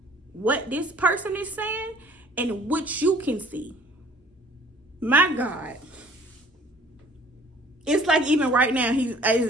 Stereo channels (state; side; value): normal; both; correlation 0.53